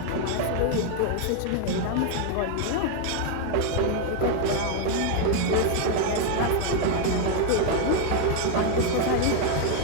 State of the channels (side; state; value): both; different; correlation 0.01